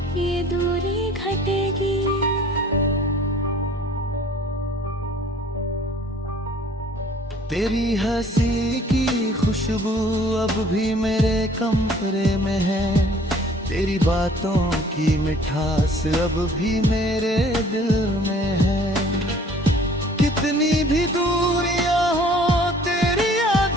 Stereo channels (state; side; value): normal; both; correlation 0.54